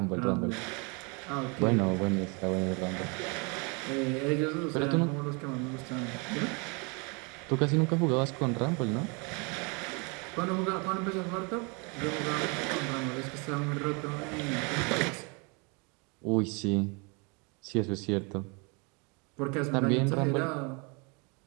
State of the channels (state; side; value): quieter; left; 31.7 dB